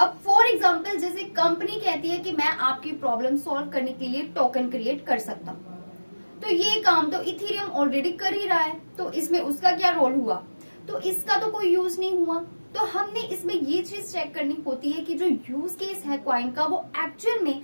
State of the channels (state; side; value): inverted; both; correlation -1.00